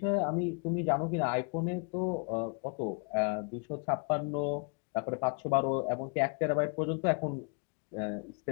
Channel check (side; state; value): right; quieter; 37.4 dB